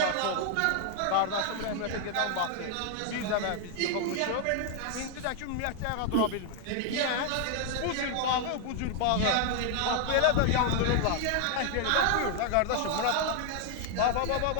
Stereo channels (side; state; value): both; different; correlation 0.00